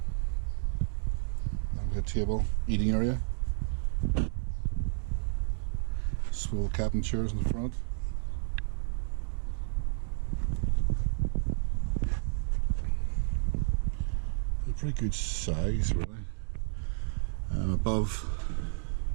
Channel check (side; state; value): left; silent; digital silence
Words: Table, eating area, swivel cabin chairs in the front, a pretty good size really. Above,